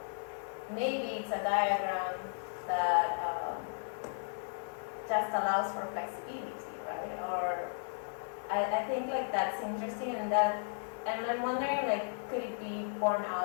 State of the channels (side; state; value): right; silent; digital silence